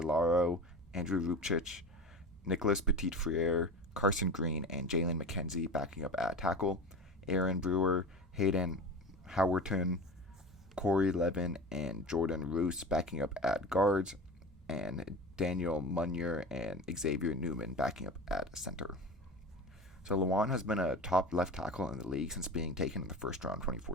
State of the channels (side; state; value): both; normal; correlation 0.31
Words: Andrew Rupchich, Nicholas Petit-Frere, Carson Green, and Jalen McKenzie backing up at tackle, Aaron Brewer, Hayden Howerton, Corey Levin, and Jordan Roos backing up at guards, and Daniel Munyer and Xavier Newman backing up at center. So Lewan has been a top left tackle in the league since being taken in the 1st round